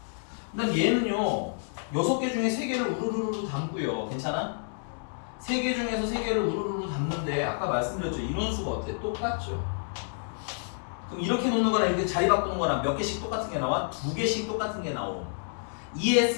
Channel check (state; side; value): silent; right; digital silence